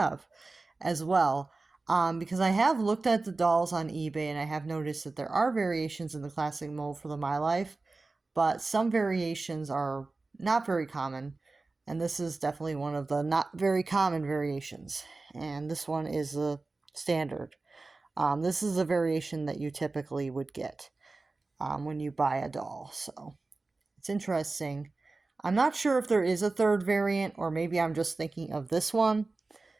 as well. Because I have looked at the dolls on eBay and I have noticed that there are variations in the classic mold for the My Life, but some variations are not very common. And this is definitely one of the not very common variations. And this one is a standard. This is a variation that you typically would get when you buy a doll. So it's interesting. I'm not sure if there is a third variant or maybe I'm just thinking of this one.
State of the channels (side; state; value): left; quieter; 3.5 dB